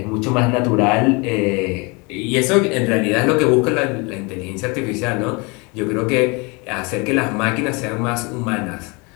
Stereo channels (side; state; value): right; quieter; 28.9 dB